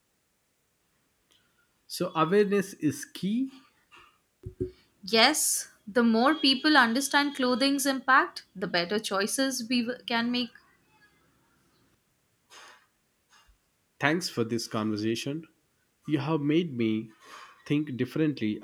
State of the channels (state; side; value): identical; both; correlation 1.00